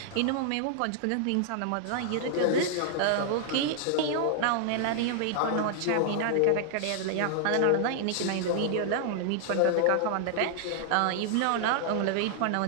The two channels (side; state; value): both; different; correlation -0.01